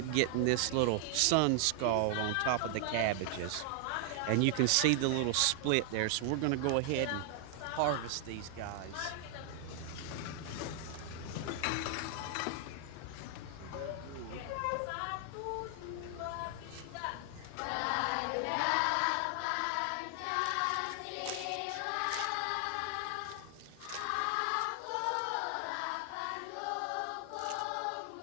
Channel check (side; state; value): both; different; correlation 0.00